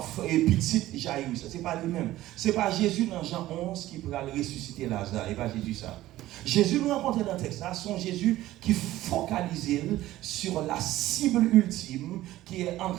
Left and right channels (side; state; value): left; quieter; 15.4 dB